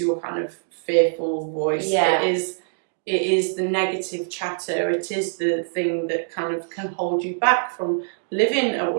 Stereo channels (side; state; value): left; silent; digital silence